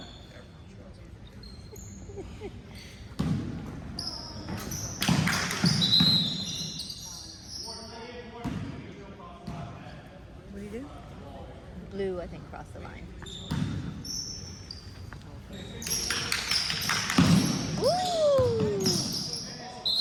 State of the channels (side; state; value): both; identical; correlation 1.00